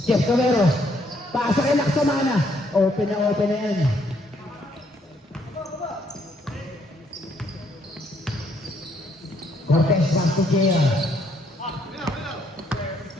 Jeff Camero. Pasa kay Laksamana. Open na yan. Cortez back to Gea.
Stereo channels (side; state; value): both; normal; correlation 0.70